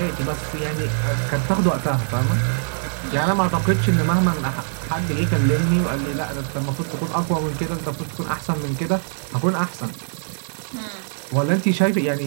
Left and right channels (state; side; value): silent; left; digital silence